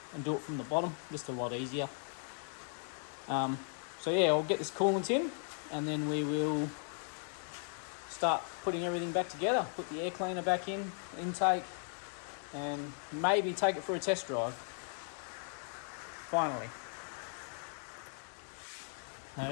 and do it from the bottom, just a lot easier. So yeah, I'll get this coolant in and then we will start putting everything back together. Put the air cleaner back in, intake, and maybe take it for a test drive. Finally. Now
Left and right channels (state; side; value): silent; right; 53 dB below the other